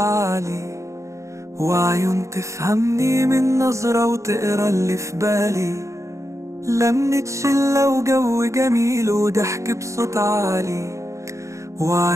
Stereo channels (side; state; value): left; late; 0.15 ms